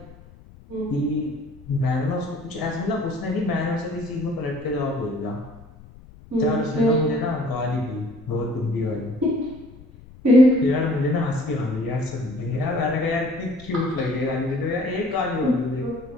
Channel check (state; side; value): noise; left; rumble, 21 dB below the sound